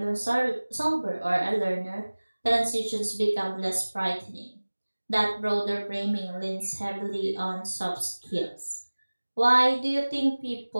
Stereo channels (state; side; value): inverted; both; correlation -1.00